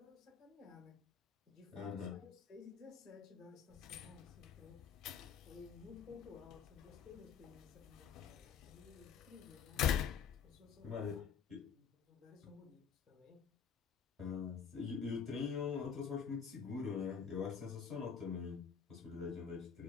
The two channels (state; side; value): quieter; right; 6.9 dB